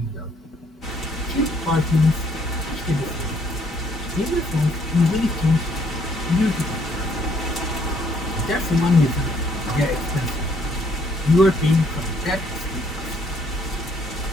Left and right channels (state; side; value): normal; both; correlation 0.66